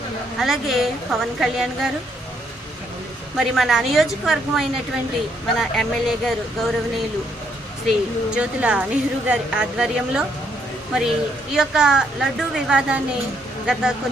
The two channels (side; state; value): both; normal; correlation 0.72